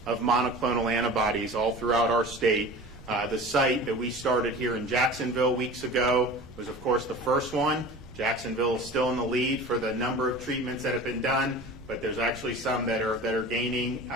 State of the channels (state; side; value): noise; right; rumble, 20 dB below the sound